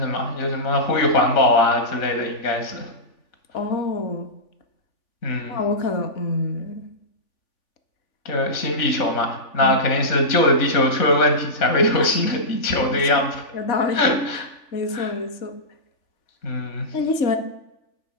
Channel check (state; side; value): late; right; 3.5 ms